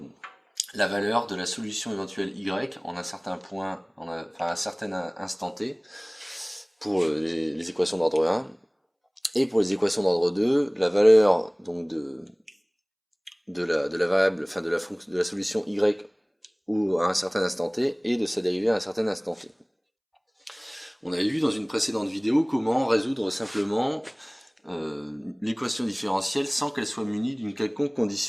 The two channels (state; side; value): identical; both; correlation 1.00